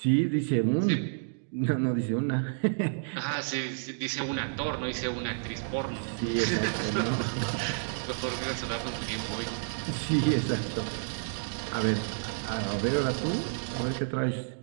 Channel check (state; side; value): silent; left; digital silence